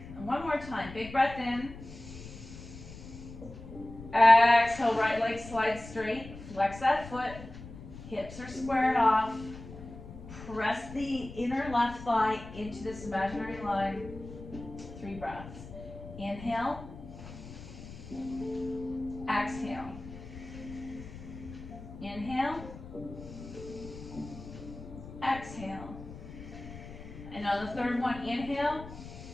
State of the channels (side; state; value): left; noise; rumble, 14 dB below the sound